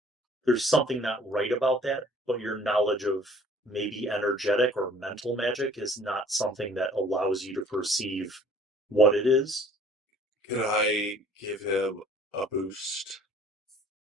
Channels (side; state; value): both; normal; correlation 0.53